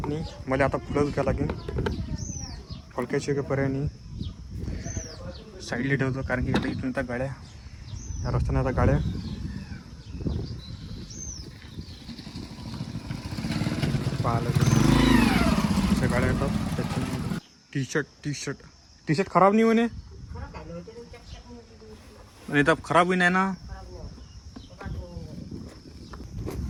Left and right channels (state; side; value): identical; both; correlation 1.00